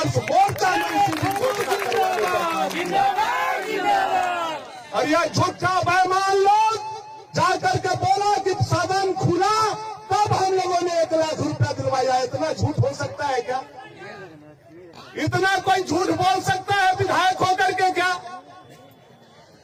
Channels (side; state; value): both; identical; correlation 1.00